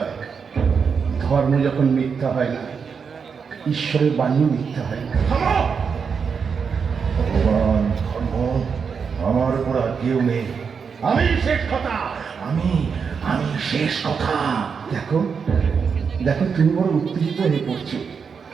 ধর্ম যখন মিথ্যা হয় না, ঈশ্বরের বাণীও মিথ্যা হয় না। ভগবান, ধর্ম, আমার উপর আর কেউ নেই। আমি শেষ কথা, আমি আমি শেষ কথা। দেখো দেখো, তুমি বড় উত্তেজিত হয়ে পড়ছো।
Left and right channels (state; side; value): quieter; left; 6.0 dB